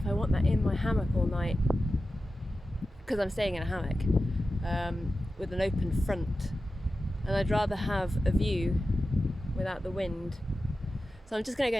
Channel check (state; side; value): normal; both; correlation 0.93